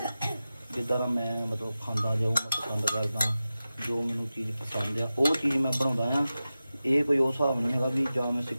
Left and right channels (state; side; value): inverted; both; correlation -0.94